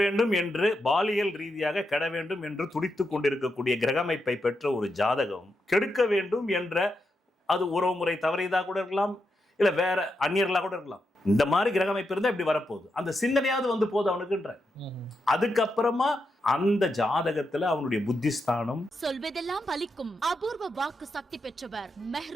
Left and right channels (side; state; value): both; normal; correlation 0.85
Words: வேண்டும் என்று பாலியல் ரீதியாக கெட வேண்டும் என்று துடித்து கொண்டிருக்கக்கூடிய கிரகமைப்பை பெற்ற ஒரு ஜாதகம் கெடுக்க வேண்டும் என்ற, அது உறவுமுறை தவறியதாக கூட இருக்கலாம், இல்ல வேற அந்நியர்களாக கூட இருக்கலாம். இந்த மாதிரி கிரகமைப்பு இருந்தா இப்படி வரப்போகுது, அந்த சிந்தனையாவது வந்து போகுது அவனுக்குன்ற. அதுக்கப்புறமா அந்த ஜாதகத்துல அவனுடைய புத்திஸ்தானம் சொல்வதெல்லாம் பலிக்கும் அபூர்வ வாக்கு சக்தி பெற்றவர்